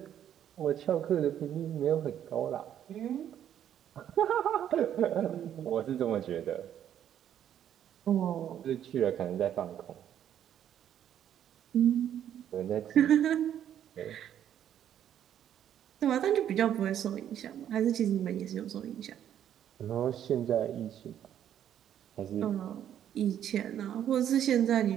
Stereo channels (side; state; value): left; quieter; 10.2 dB